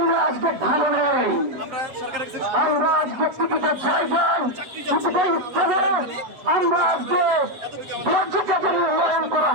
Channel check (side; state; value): left; late; 7.9 ms